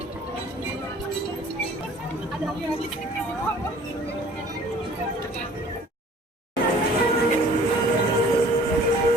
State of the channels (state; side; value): normal; both; correlation 0.51